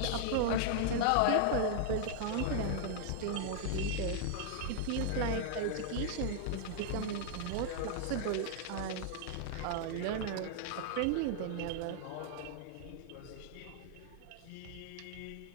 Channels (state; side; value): different; both; correlation -0.01